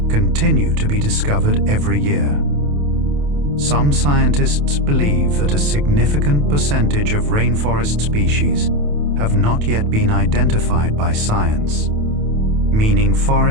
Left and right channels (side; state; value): left; late; 28 ms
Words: continue to be discovered every year. Some scientists believe that a significant percentage of rainforest species have not yet been identified by science, meaning